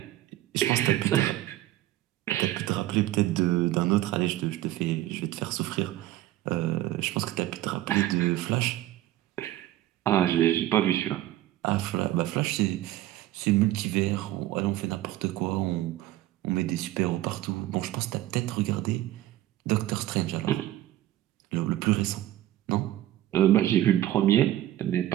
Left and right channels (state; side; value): quieter; left; 14.5 dB